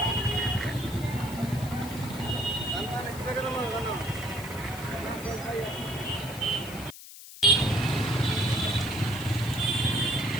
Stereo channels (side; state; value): left; noise; hiss, 15 dB below the sound